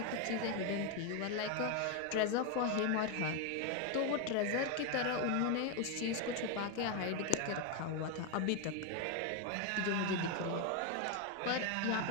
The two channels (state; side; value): different; both; correlation 0.02